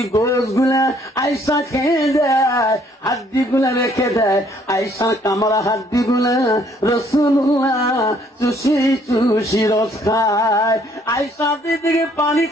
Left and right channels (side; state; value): both; normal; correlation 0.64